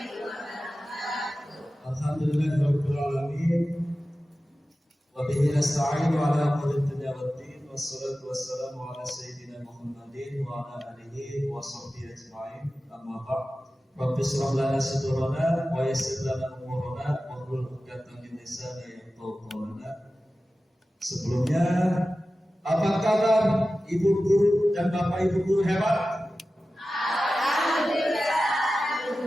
Alhamdulillahirabbil alamin. Wa bihi nasta'inu ala umuri dunya waddin. Wassalatu wassalamu ala sayyidina Muhammadin wa ala alihi wa sahbihi ajma'in. Amma ba'd. Rabbi shrah lana sadrana wa yassir lana umurana wa hlul 'uqdatam min lisani yafqahu qawlana. Sebelumnya, apa kabar ibu guru dan bapak ibu guru hebat? Alhamdulillah,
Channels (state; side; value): normal; both; correlation 0.95